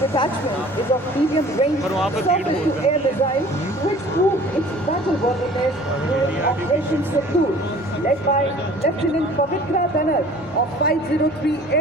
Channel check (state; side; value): normal; both; correlation 0.48